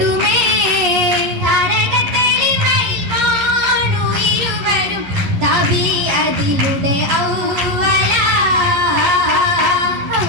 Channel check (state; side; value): late; left; 11 ms